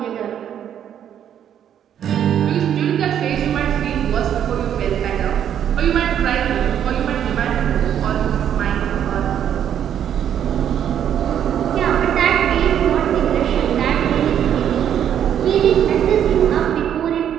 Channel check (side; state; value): left; quieter; 9.6 dB